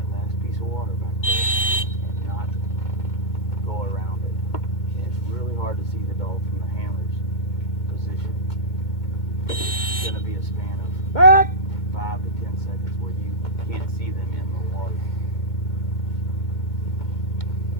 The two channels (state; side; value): late; right; 2.2 ms